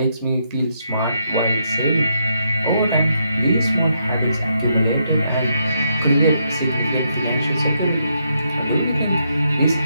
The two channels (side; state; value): both; inverted; correlation -0.78